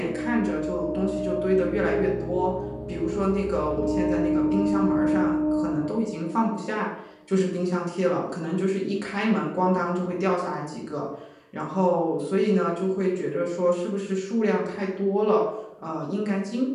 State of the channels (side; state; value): both; identical; correlation 1.00